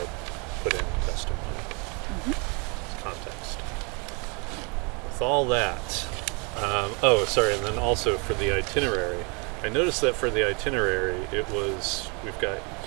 put in testimony. Context. With all that, and then also for the itinerary, I noticed that for the itinerary we've got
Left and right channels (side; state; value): left; quieter; 33.1 dB